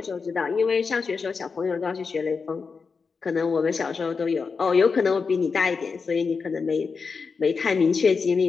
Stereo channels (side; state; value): right; quieter; 5.1 dB